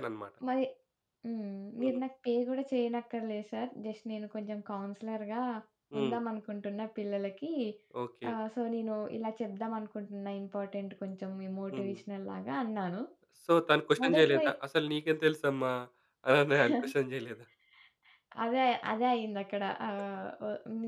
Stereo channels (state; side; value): identical; both; correlation 1.00